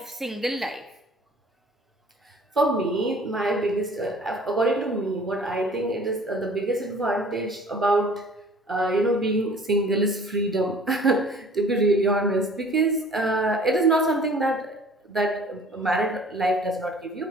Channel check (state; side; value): normal; both; correlation 0.50